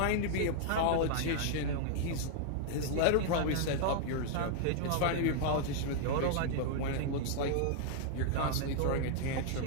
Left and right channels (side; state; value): both; different; correlation -0.01